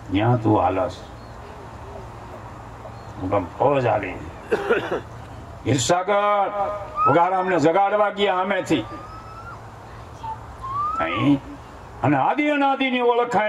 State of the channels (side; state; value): both; identical; correlation 1.00